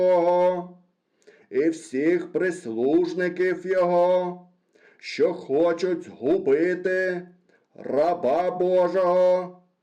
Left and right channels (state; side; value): identical; both; correlation 1.00